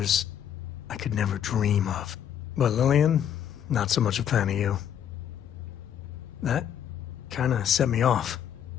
I could never dream of. But Lillian, not so much a fan of you. That kinda set me off.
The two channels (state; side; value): quieter; right; 9.5 dB